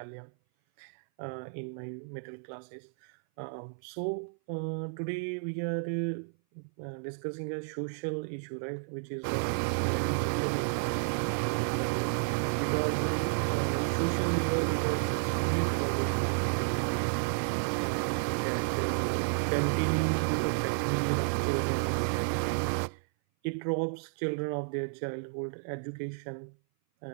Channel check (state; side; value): silent; left; 57 dB below the other